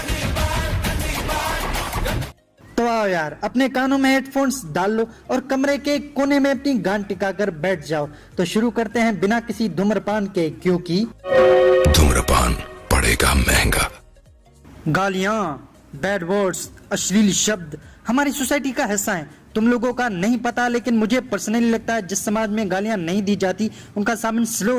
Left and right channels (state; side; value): identical; both; correlation 1.00